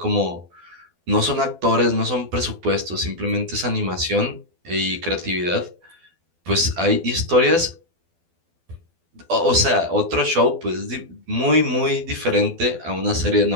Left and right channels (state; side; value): late; left; 12 ms